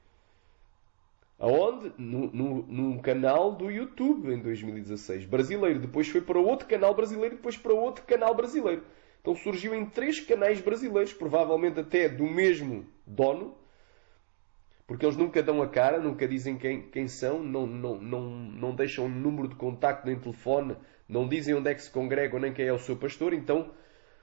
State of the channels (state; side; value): silent; left; 57 dB below the other